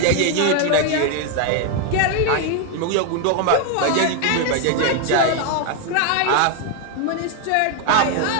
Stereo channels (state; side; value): different; both; correlation 0.01